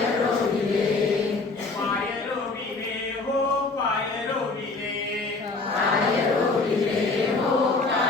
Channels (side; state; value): right; quieter; 3.7 dB